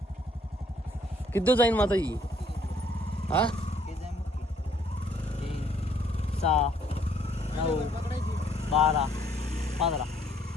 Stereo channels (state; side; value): normal; both; correlation 0.64